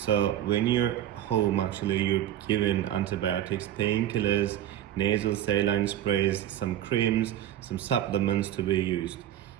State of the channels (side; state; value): left; quieter; 11.8 dB